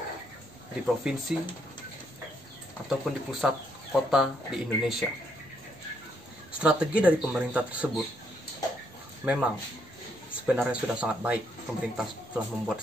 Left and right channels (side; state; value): both; normal; correlation 0.73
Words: di provinsi ataupun di pusat kota di Indonesia. Strategi dari pemerintah tersebut memang sebenarnya sudah sangat baik. Pemerintah telah